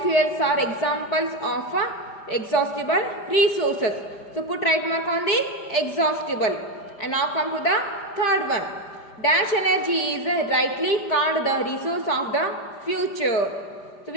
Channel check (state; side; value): late; right; 5.0 ms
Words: are examples of exhaustible resources. So put right mark on the exhaustible. And now come to the third one. Dash energy is rightly called the resource of the future. So